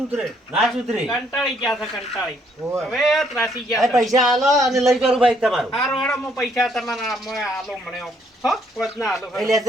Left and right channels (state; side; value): normal; both; correlation 0.69